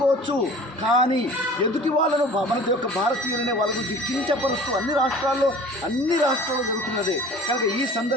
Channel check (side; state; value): both; normal; correlation 0.44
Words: కానీ ఎదుటి వాళ్ళను మన యొక్క భారతీయులనే వాళ్ళ గురించి కించపరుస్తూ అన్ని రాష్ట్రాల్లో జరుగుతున్నదే. కనుక ఈ